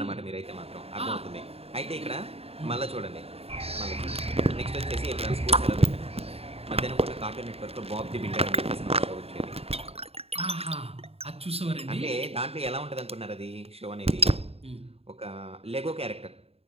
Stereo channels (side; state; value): left; late; 0.29 ms